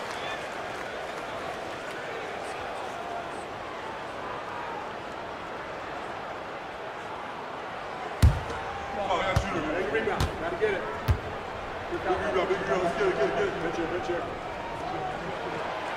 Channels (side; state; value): both; identical; correlation 1.00